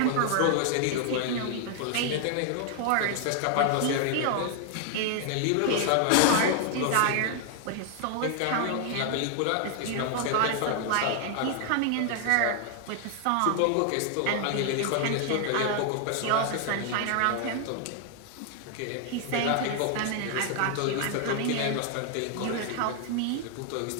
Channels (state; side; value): different; both; correlation 0.00